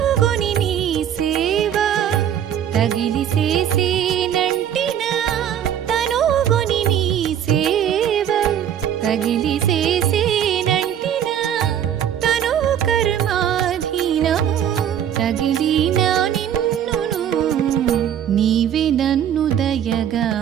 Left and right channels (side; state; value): left; quieter; 9.7 dB